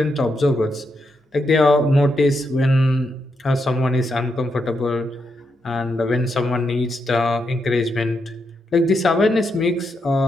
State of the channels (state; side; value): normal; both; correlation 0.82